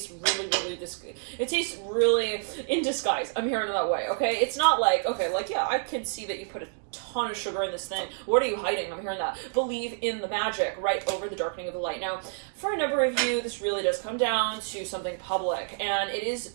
really in disguise. I'm hearing it that way. Okay. It's not like, okay, like, yeah, I can see that you put a ton of sugar in this thing. What are you hiding? I'm hearing that. Believe in the magic right over the darkening of the light. Now, for a number of you, this really does come down to something public, and it is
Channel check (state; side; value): silent; left; digital silence